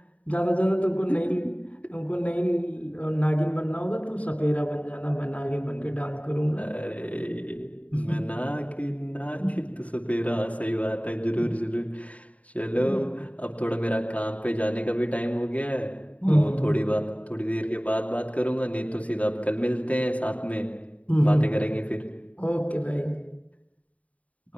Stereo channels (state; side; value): late; right; 0.068 ms